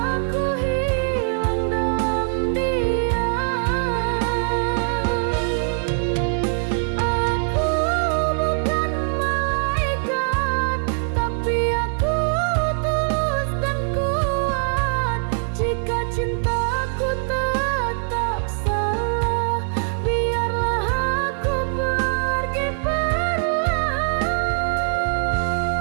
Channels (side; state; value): left; silent; 64 dB below the other